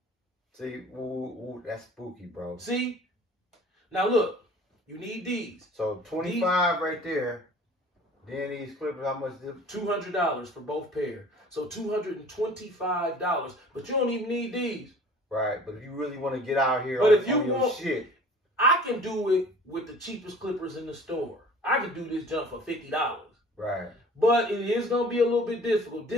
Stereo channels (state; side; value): normal; both; correlation 0.47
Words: See, ooh, that's spooky, bro. See? Now look, you need these. So 25 right there. Then these Clippers, how much? $200 for both pair. So $225. But you don't even need these. Right, but if you really want to get out here But on, if you on your want, shit. I can do it with the cheapest clippers in the store. I can do this jump for $50. Right. But it is going to be a little bit difficult.